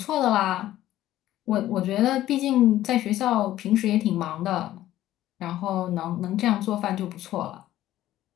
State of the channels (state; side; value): quieter; right; 13.9 dB